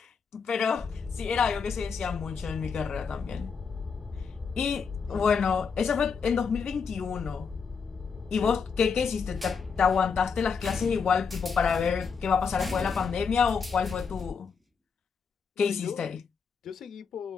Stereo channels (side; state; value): right; quieter; 5.8 dB